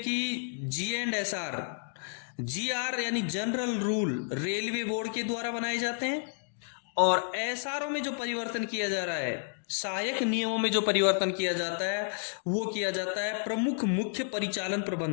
G&SR GR यानी जनरल रूल रेलवे बोर्ड के द्वारा बनाए जाते हैं और एसआरओ में जो परिवर्तन किया जा रहा है, सहायक नियमों में जो परिवर्तन किया जाता है वो किया जाता है प्रमुख मुख्य परिचालन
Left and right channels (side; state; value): right; silent; digital silence